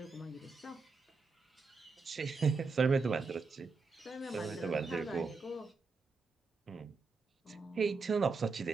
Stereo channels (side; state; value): left; quieter; 4.4 dB